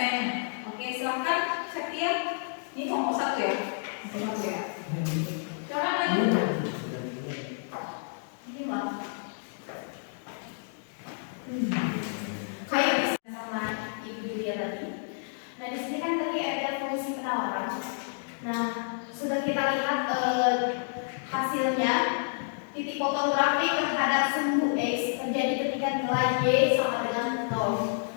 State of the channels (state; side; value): silent; right; digital silence